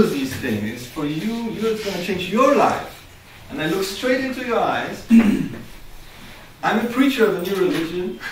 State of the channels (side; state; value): both; identical; correlation 1.00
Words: these things. It's for you, it's gonna change your life. And I look straight into your eyes. I'm a preacher of a new religion,